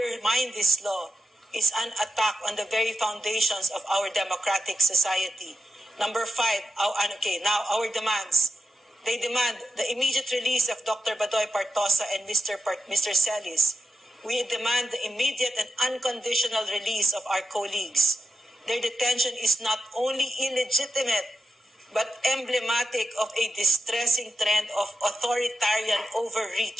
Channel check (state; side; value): normal; both; correlation 0.90